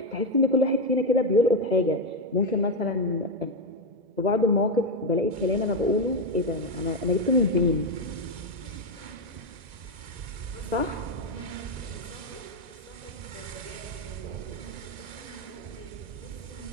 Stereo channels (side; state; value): left; late; 2.0 ms